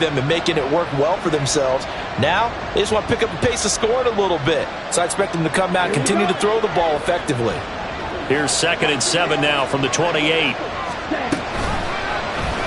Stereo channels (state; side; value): identical; both; correlation 1.00